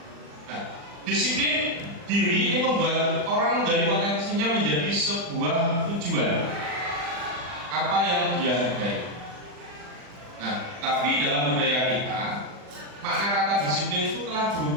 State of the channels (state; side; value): late; left; 40 ms